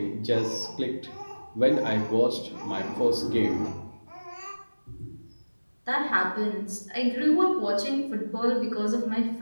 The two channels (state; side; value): inverted; both; correlation -1.00